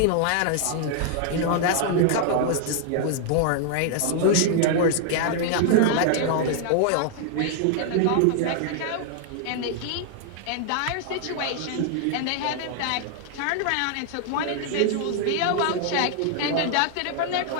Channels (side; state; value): both; different; correlation 0.00